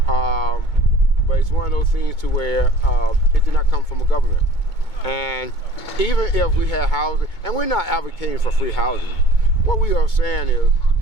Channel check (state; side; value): late; right; 2.2 ms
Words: But it's one of those things to where it did not come from a government. And even if we had housing, and we're not advocating for free housing, what we are saying is